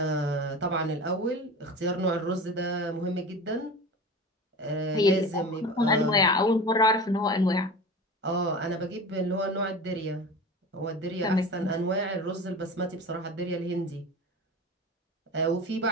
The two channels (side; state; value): both; normal; correlation 0.33